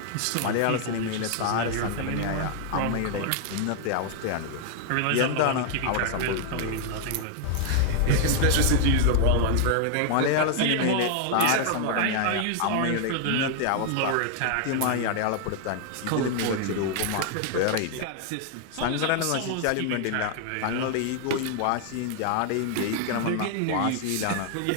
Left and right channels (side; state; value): both; different; correlation 0.00